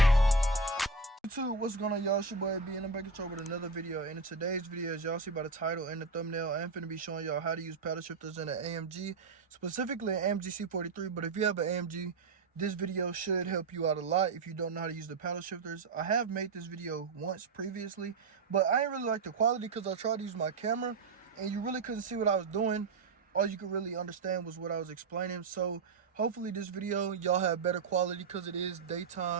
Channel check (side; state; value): left; quieter; 4.1 dB